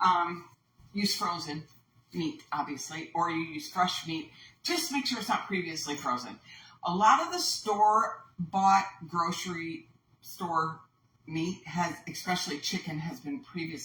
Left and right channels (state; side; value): identical; both; correlation 1.00